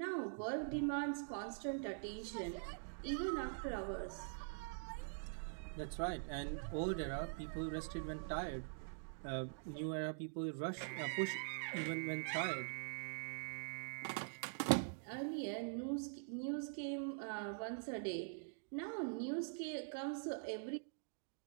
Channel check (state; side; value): silent; left; digital silence